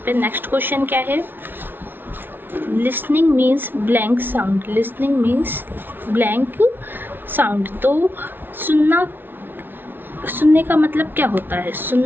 पे। नेक्स्ट क्वेश्चन क्या है? Listening means blank sound. Listening means blank sound. तो सुनने का मतलब क्या होता है?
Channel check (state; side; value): late; left; 0.099 ms